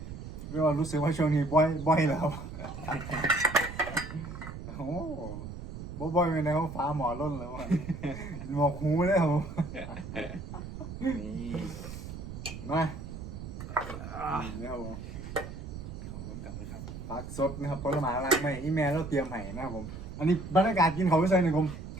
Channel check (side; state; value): right; noise; rumble, 9 dB below the sound